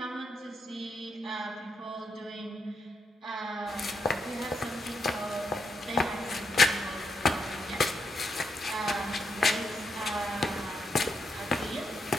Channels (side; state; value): both; normal; correlation 0.81